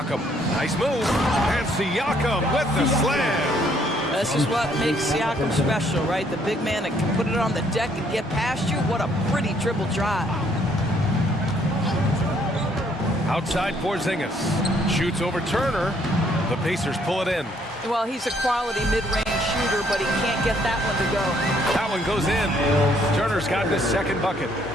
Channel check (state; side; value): normal; both; correlation 0.67